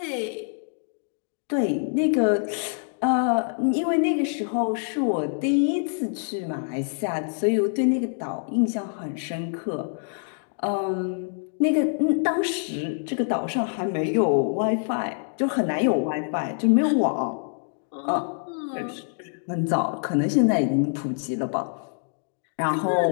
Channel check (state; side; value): silent; right; digital silence